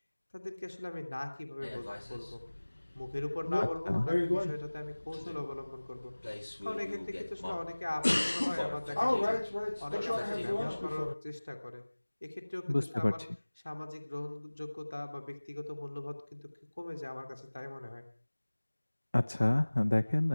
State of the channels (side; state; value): both; inverted; correlation -1.00